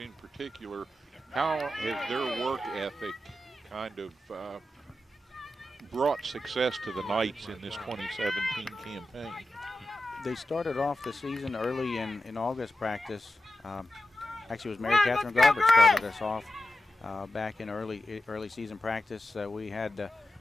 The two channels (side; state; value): both; normal; correlation 0.91